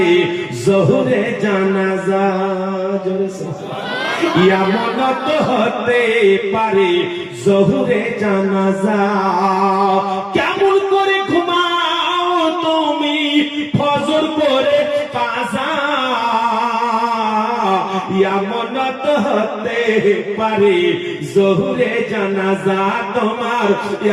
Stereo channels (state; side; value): identical; both; correlation 1.00